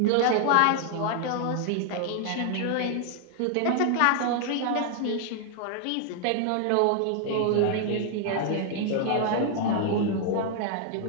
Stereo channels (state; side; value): different; both; correlation 0.00